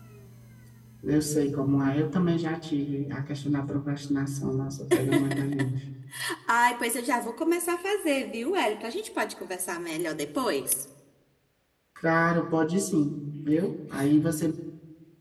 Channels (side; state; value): both; identical; correlation 1.00